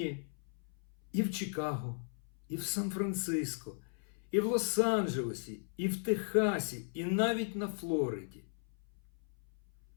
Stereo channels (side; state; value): right; silent; 53 dB below the other